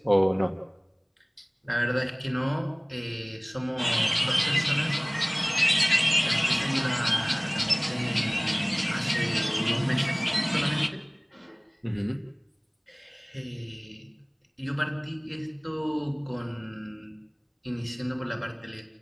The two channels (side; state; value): both; identical; correlation 1.00